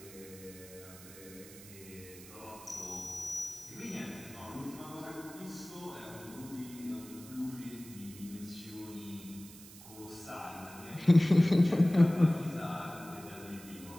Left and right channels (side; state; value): right; noise; hiss, 17 dB below the sound